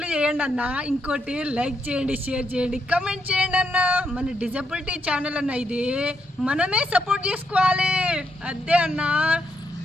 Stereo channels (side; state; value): both; normal; correlation 0.78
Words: చేయండి అన్న. ఇంకోటి లైక్ చేయండి, షేర్ చేయండి, కమెంట్ చేయండి అన్న. మన డిజబిలిటీ ఛానల్ అన్న, ఇది మనమే సపోర్ట్ చేసుకోవాలి. అదే అన్న.